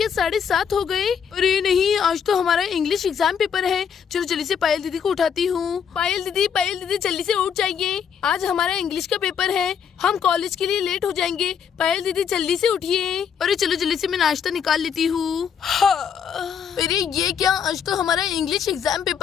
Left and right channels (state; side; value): quieter; right; 7.5 dB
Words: 7:30 हो गए। अरे नहीं, आज तो हमारा इंग्लिश एग्जाम पेपर है। चलो जल्दी से पायल दीदी को उठाती हूँ। पायल दीदी जल्दी से उठ जाइए, आज हमारा इंग्लिश का पेपर है, हम कॉलेज के लिए लेट हो जाएंगे। पायल दीदी जल्दी से उठिए। अरे चलो जल्दी से मैं नाश्ता निकाल लेती हूँ। अरे ये क्या, आज तो हमारा इंग्लिश एग्जाम